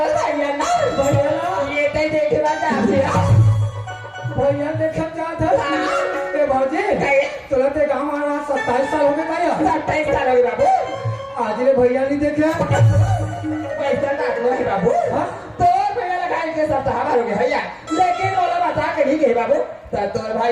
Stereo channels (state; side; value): identical; both; correlation 1.00